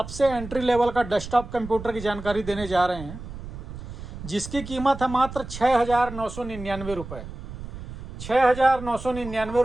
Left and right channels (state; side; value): noise; right; rumble, 11 dB below the sound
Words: एंट्री लेवल का डेस्कटॉप कंप्यूटर की जानकारी देने जा रहे हैं, जिसकी कीमत है मात्र 6,999 रुपये। 6,999